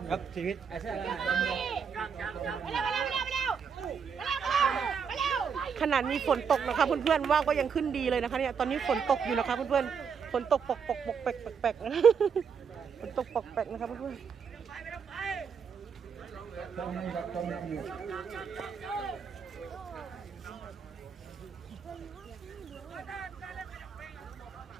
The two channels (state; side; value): quieter; left; 6.5 dB